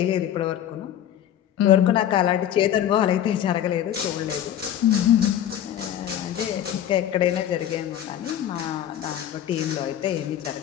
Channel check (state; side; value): quieter; right; 10.8 dB